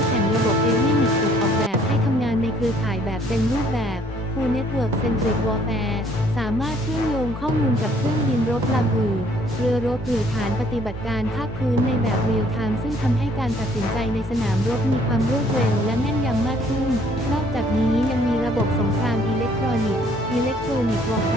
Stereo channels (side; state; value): both; normal; correlation 0.61